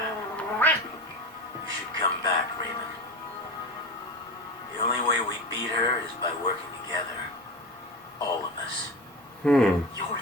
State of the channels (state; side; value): normal; both; correlation 0.26